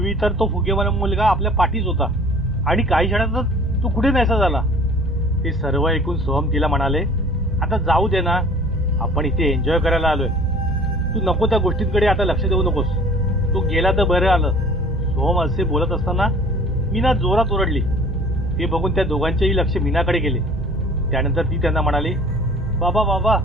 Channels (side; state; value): both; normal; correlation 0.48